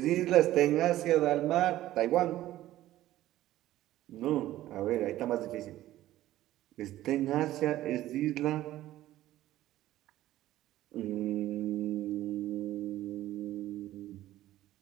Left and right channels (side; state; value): left; quieter; 14.6 dB